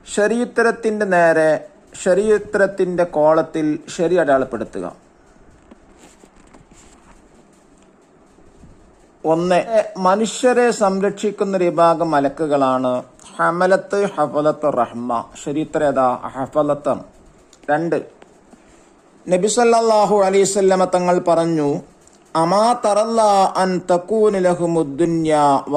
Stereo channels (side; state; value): both; identical; correlation 1.00